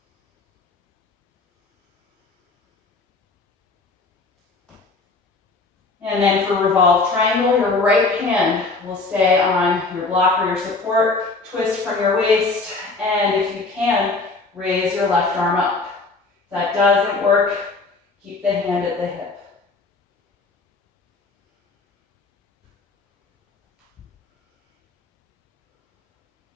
And then for Revolved Triangle, your right hand will stay on your block or your support. Twist from your waist, and if you can, raise your left arm up. If that doesn't work, keep the hand at the hip.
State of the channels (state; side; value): quieter; right; 3.7 dB